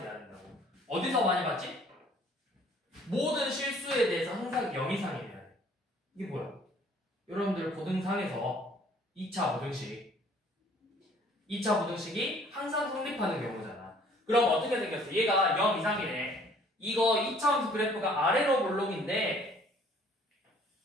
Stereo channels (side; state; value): both; normal; correlation 0.57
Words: 돼야 된다고. 어디서 많이 봤지? 모든 실수에 대해서 항상 0 이상이 돼야 돼. 이게 뭐야? 여러분들 고등상에서 2차 부등식이 항상 성립하는 경우잖아. 그럼 어떻게 생겼어? 얘가 0 이상이네. 이거 2차함수 그래프가 아래로 볼록인데